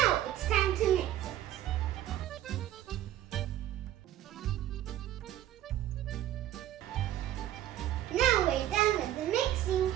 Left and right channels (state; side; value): quieter; left; 12.6 dB